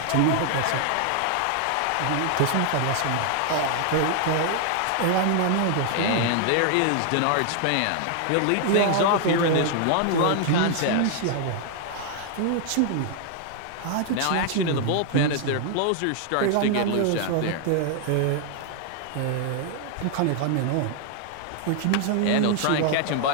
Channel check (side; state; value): both; different; correlation 0.00